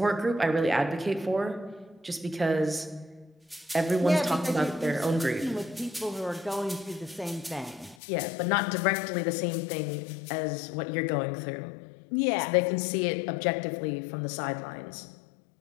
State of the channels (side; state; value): right; drops out; at 8.0 s